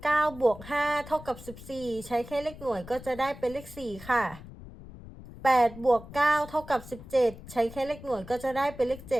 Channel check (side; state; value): left; noise; rumble, 16 dB below the sound